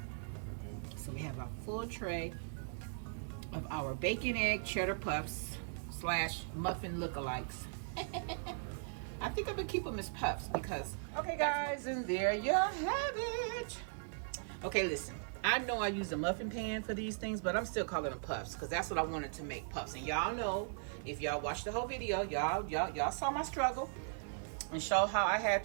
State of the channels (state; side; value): silent; left; digital silence